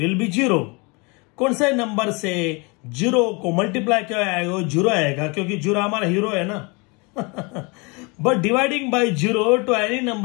be zero. कौन से नंबर से जीरो को मल्टीप्लाई क्या आएगा, जीरो आएगा, क्योंकि जीरो हमारा हीरो है ना. But dividing by zero to any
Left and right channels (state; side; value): quieter; right; 29.2 dB